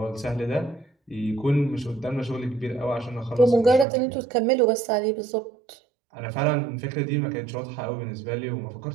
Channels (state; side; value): drops out; left; at 3.9 s